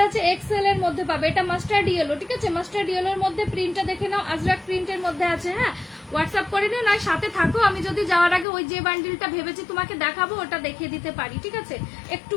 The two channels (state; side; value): drops out; right; at 8.5 s